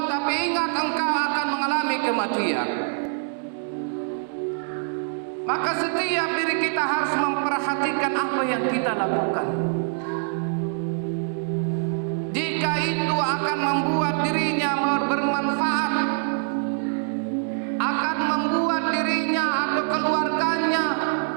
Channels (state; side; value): silent; left; digital silence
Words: tapi ingat engkau akan mengalami kematian. Maka setiap diri kita harus memperhatikan apa yang kita lakukan. Jika itu akan membuat dirinya bermanfaat, akan membuat dirinya atau keluarganya